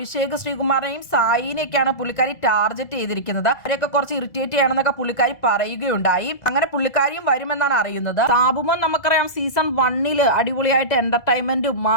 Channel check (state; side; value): late; right; 2.0 ms